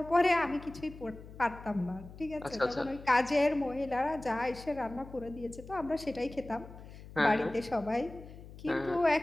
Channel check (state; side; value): noise; left; hum, 16 dB below the sound